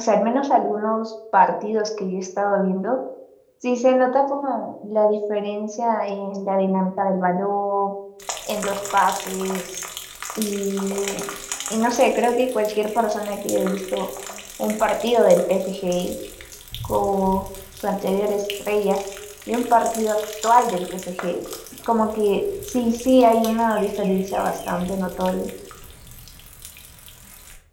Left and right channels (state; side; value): identical; both; correlation 1.00